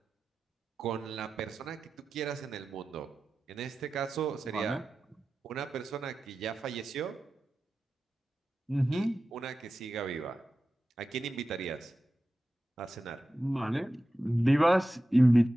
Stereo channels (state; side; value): normal; both; correlation 0.93